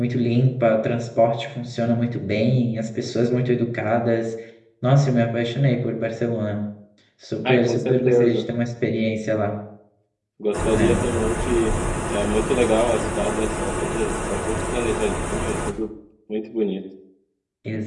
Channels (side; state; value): both; identical; correlation 1.00